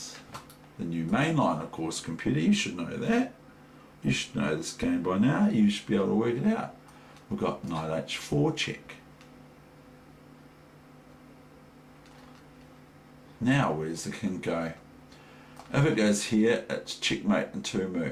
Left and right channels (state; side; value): identical; both; correlation 1.00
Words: the new mainline, of course, computer, you should know that. You should know this game by now. You should be able to work it out. We've got knight h4 check. Now where's the king go? If it goes here, it's checkmate in 2